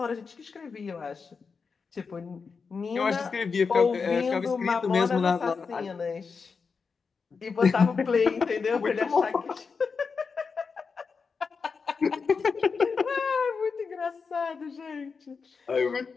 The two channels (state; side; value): quieter; right; 5.2 dB